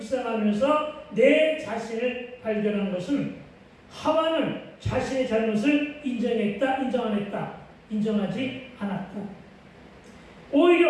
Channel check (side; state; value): both; identical; correlation 1.00